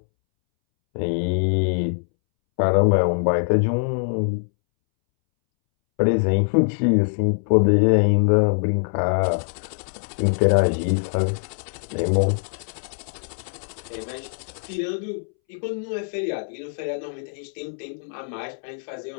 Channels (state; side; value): silent; right; 63 dB below the other